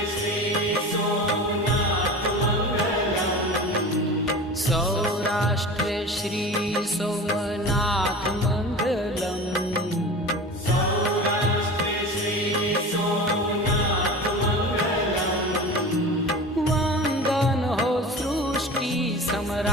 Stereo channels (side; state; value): both; normal; correlation 0.34